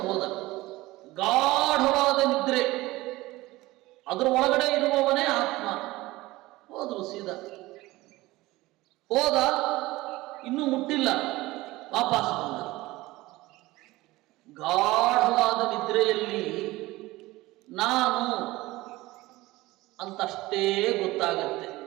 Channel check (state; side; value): quieter; left; 19.1 dB